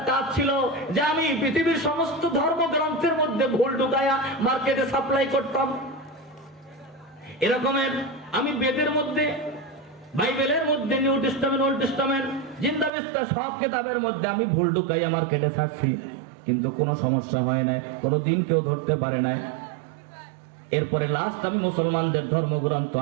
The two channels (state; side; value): drops out; left; at 12.9 s